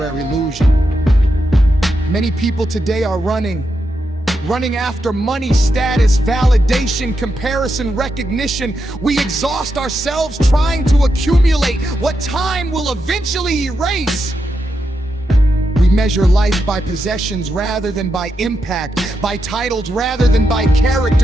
illusion. Many people today are running after money, status, validation, comparison, recognition. We exhaust ourselves trying to accumulate what time will eventually erase. We measure life by possessions rather than by impact, by titles rather than by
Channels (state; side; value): normal; both; correlation 0.85